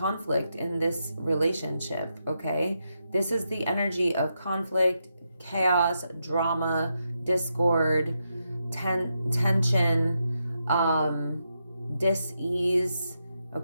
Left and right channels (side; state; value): both; inverted; correlation -0.84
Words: in this relationship, okay? This is the energy of conflict, chaos, drama, discord, tension, dis-ease,